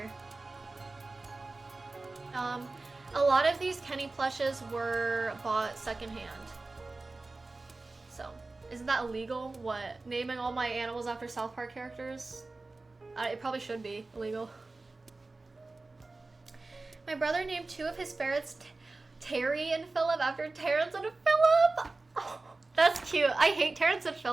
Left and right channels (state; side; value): quieter; left; 3.4 dB